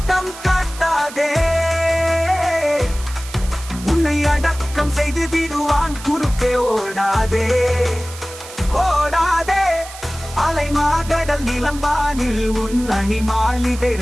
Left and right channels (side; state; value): right; noise; hiss, 15 dB below the sound